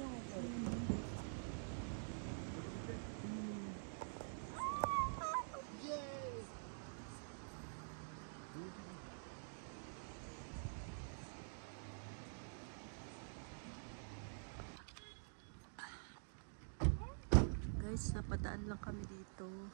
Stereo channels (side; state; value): left; silent; digital silence